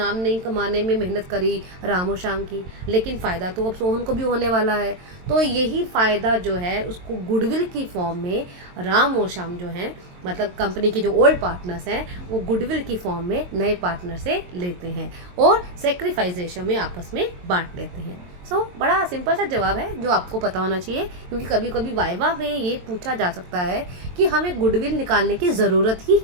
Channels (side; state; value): left; late; 22 ms